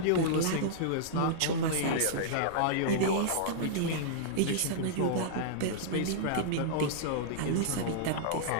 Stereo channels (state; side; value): different; both; correlation -0.02